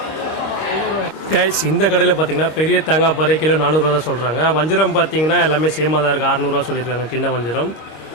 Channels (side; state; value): right; late; 25 ms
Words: கைஸ் இந்த கடையில் பார்த்தீங்கன்னா பெரிய தேங்காய் பாறை கிலோ 400 ரூபா தான் சொல்கிறாங்க. வஞ்சிரம் பார்த்தீங்கன்னா எல்லாமே சேமாக தான் இருக்குது, 600 ரூபா சொல்லியிருக்காங்க சின்ன வஞ்சிரம்.